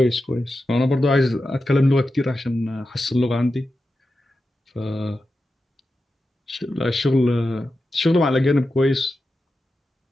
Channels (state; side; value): normal; both; correlation 0.91